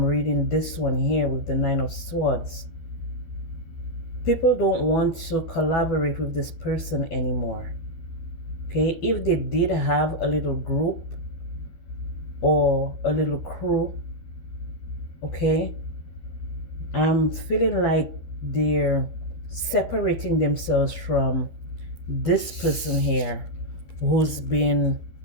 reading this one here with the Nine of Swords. People don't want to collaborate with this person anymore, okay? If they did have a little group or a little crew, okay, I'm feeling like they're separating themselves from this person here who's been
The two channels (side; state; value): right; late; 13 ms